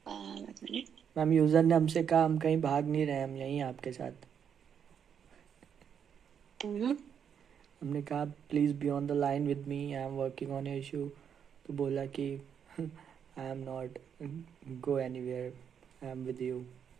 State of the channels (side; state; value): left; quieter; 7.9 dB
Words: एक मिनट. मैम यूज़र ने हमसे कहा हम कहीं भाग नहीं रहे, हम यहीं आपके साथ। हमने कहा please be on the line with me, I am working on your issue. तो बोला कि आई am not go anywhere, I am with you.